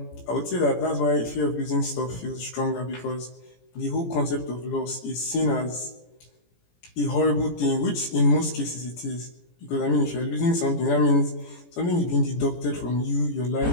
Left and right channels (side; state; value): right; late; 17 ms